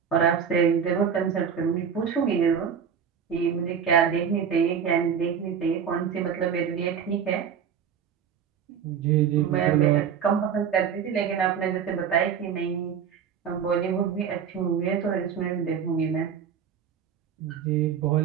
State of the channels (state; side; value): quieter; left; 7.6 dB